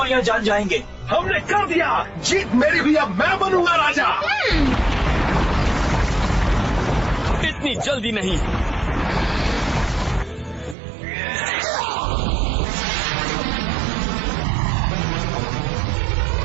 जान जाएंगे। हमने कर दिया। जीत मेरी भी, अब मैं बनूंगा राजा। इतनी जल्दी नहीं।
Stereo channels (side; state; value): left; drops out; at 10.8 s